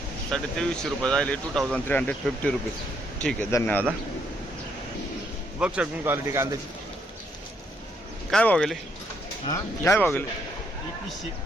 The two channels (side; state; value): both; normal; correlation 0.72